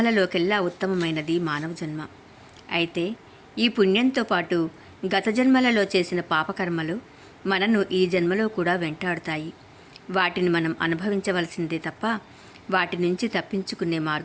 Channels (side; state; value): both; identical; correlation 1.00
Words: ఉత్తమమైనది మానవ జన్మ. అయితే ఈ పుణ్యంతో పాటు గత జన్మలలో చేసిన పాపకర్మలు మనను ఈ జన్మలో కూడా వెంటాడుతాయి. వాటిని మనం అనుభవించవలసిందే తప్ప వాటి నుంచి తప్పించుకునే